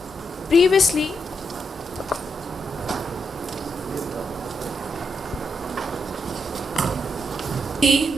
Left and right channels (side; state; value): both; normal; correlation 0.80